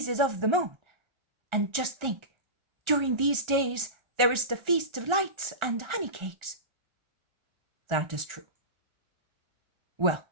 of the moon. And just think, during these days there is the Feast of Lights and honey cakes." That is true. Well,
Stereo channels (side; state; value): left; late; 1.3 ms